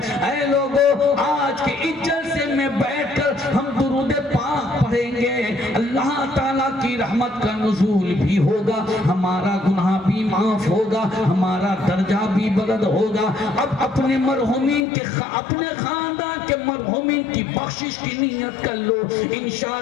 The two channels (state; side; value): drops out; right; at 14.9 s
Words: اے لوگوں آج کے اس جلسے میں بیٹھ کر ہم درود پاک پڑھیں گے، اللہ تعالیٰ کی رحمت کا نزول بھی ہوگا، ہمارا گناہ بھی معاف ہوگا، ہمارا درجہ بھی بلند ہوگا. اب اپنے مرحومین کے اپنے خاندان کے مرحومین کی بخشش کی نیت کر لو،